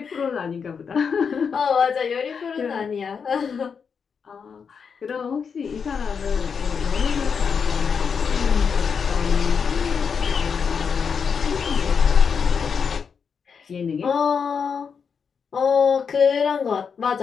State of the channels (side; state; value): right; quieter; 6.2 dB